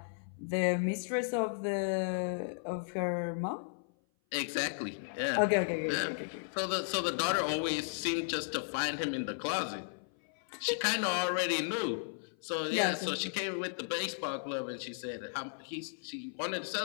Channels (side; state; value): right; silent; 55 dB below the other